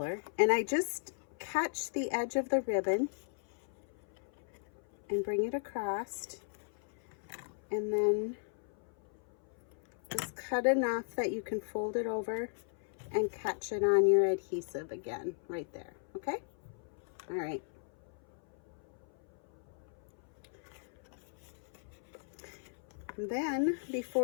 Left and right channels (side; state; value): right; silent; 53 dB below the other